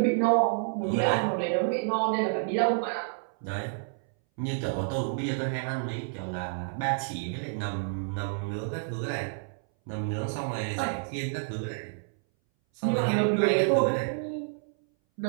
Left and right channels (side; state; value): left; silent; 59 dB below the other